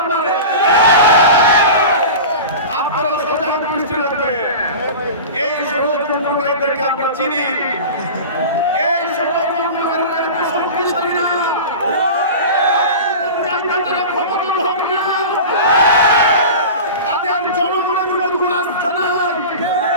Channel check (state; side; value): inverted; both; correlation -0.32